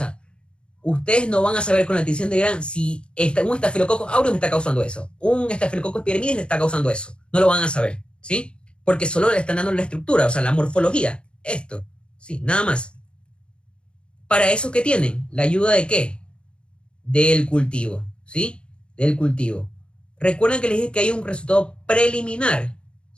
ustedes no van a saber con la tinción de Gram si un estafilococcus aureus me está causando eso, un estafilococcus epidermidis le está causando eso. No lo van a saber, ¿sí? Porque solo le están dando la estructura, o sea, la morfología. Esto, ¿sí? Nada más. ¿Para eso qué tienen? ¿La ayuda de qué? Del cultivo, ¿sí? Del cultivo. Recuerden que les dije que hay un resultado preliminar,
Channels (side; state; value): right; late; 0.055 ms